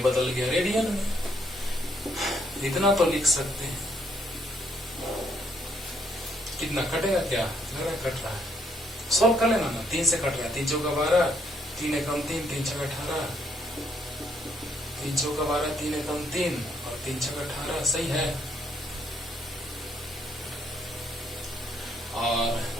गया रेडियन में। इतना तो लिख सकते हैं। कितना कटेगा? क्या लग रहा है कट रहा है? सॉल्व कर लेना ना, 3 से कट रहा है। 3 चौका 12, 3 एकम 3, 3 छक 18, 3 चौका 12, 3 एकम 3 और 3 छक 18, सही है।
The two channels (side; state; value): both; normal; correlation 0.71